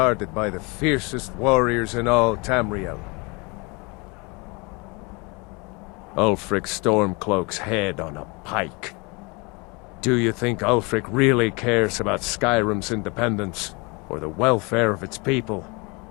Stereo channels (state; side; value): quieter; right; 28.5 dB